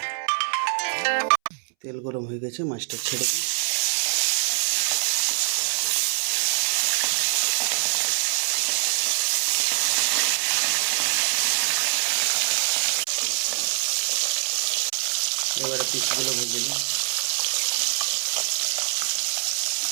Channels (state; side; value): silent; left; 62 dB below the other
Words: তেল গরম হয়ে গেছে, মাছটা ছেড়ে দিই। এবারে পিসগুলো ভেজে নিই।